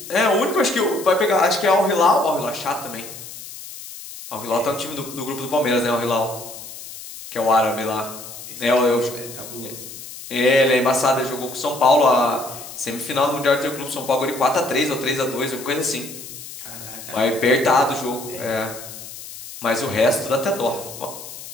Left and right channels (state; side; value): noise; left; hiss, 13 dB below the sound